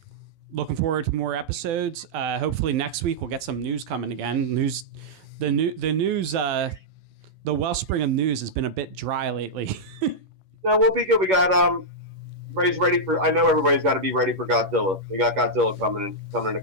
Looking forward to more episodes. Hopefully next week we'll get some news coming again. The news, the wellspring of news has been a bit dry lately. No, we'll be good. We got everybody's ready for. I know everybody's got to be ready for Godzilla. We got Godzilla coming in a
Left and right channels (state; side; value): late; left; 11 ms